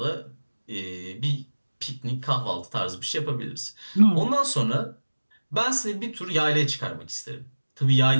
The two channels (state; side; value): inverted; both; correlation -1.00